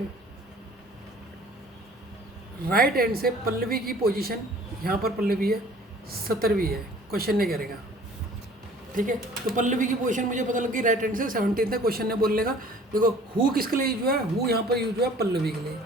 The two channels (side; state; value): both; normal; correlation 0.51